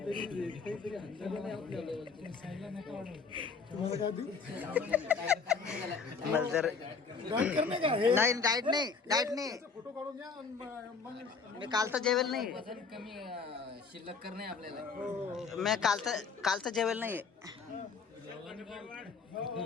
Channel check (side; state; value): right; quieter; 5.1 dB